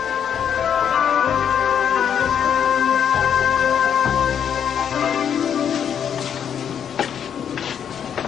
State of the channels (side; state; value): right; quieter; 8.4 dB